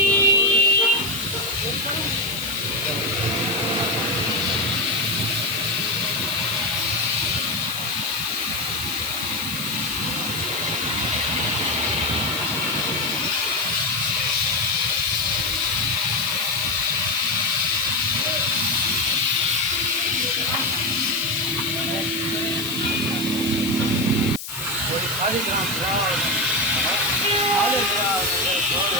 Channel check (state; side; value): noise; left; hiss, 9 dB below the sound